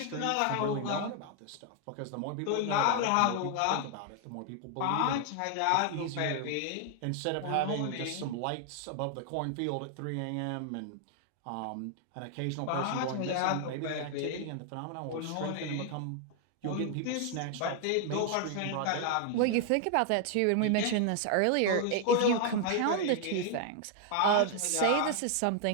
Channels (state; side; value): different; both; correlation 0.00